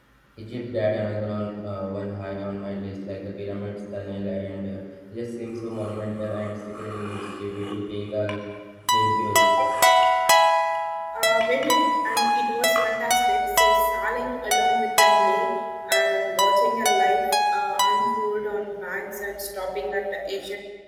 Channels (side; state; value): both; identical; correlation 1.00